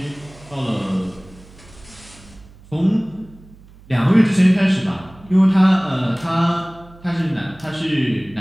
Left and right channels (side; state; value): right; noise; hum, 23 dB below the sound